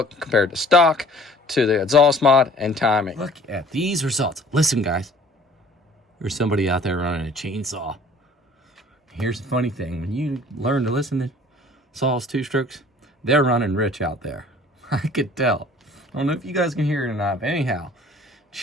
compared to stock, to the exhaust mod, and timing. Look at these results. Listen, guys. There's somebody out there running a chainsaw. Here's the funny thing. When you learn to listen to saws, two-strokes, they're running rich out there. I could tell. I don't know if you guys can hear it or not, but anyhow,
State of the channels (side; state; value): both; normal; correlation 0.51